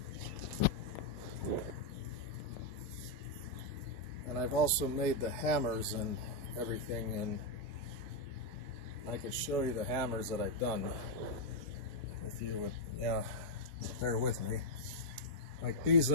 I've also made the hammers and everything, and I can show you the hammers that I've done if you would bear with me. Like these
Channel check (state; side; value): late; left; 4.7 ms